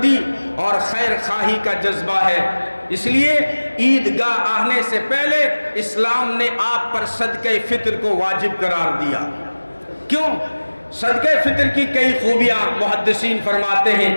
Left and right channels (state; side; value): inverted; both; correlation -1.00